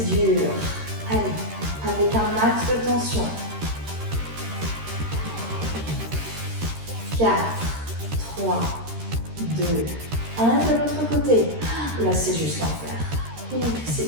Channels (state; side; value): late; left; 13 ms